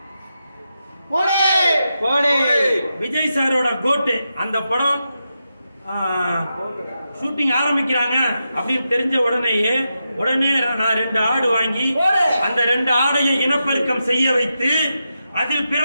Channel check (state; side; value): inverted; both; correlation -0.87